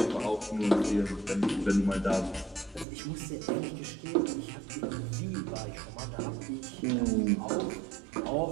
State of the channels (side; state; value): left; drops out; at 2.9 s